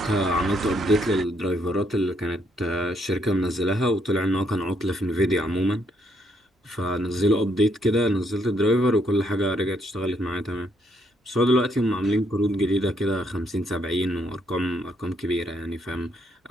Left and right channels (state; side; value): normal; both; correlation 0.72